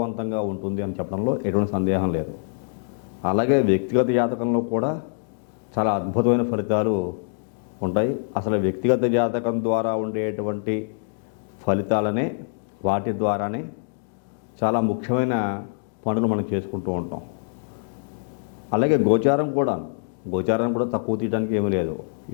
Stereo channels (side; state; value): right; silent; digital silence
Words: ఉంటుంది అని చెప్పడంలో ఎటువంటి సందేహం లేదు. అలాగే వ్యక్తిగత జాతకంలో కూడా చాలా అద్భుతమైన ఫలితాలు ఉంటాయి. అసలు వ్యక్తిగత జాతకం ద్వారా ఉండేటువంటి ఫలితాలనే, వాటి ద్వారానే చాలా ముఖ్యమైన పనులు మనం చేసుకుంటూ ఉంటాం. అలాగే గోచారం కూడా తక్కువ తీయడానికి ఏమీ లేదు.